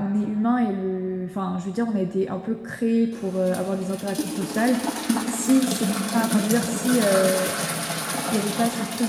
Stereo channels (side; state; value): both; identical; correlation 1.00